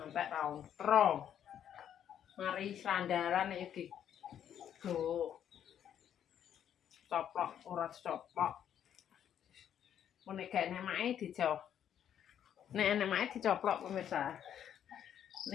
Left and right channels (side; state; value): right; quieter; 9.6 dB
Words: rautro. Mari sandaran iki go coplok ora coplok. Nek gak nemake dijauh. Nek nemake dicoplok pemirsa.